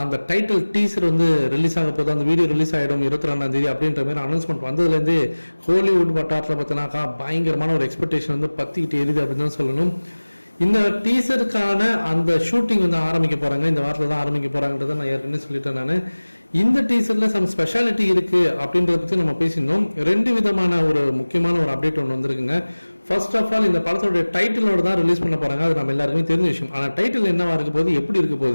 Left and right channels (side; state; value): both; inverted; correlation -1.00